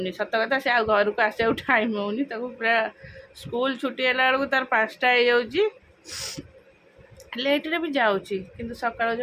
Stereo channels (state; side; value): identical; both; correlation 1.00